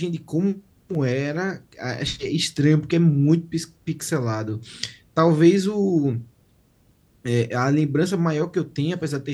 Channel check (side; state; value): both; identical; correlation 1.00